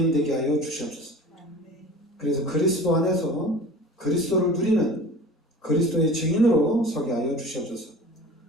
하여 주시옵소서. 그래서 그리스도 안에서 그리스도를 누리는 그리스도의 증인으로 서게 하여 주시옵소서.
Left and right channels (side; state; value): both; normal; correlation 0.40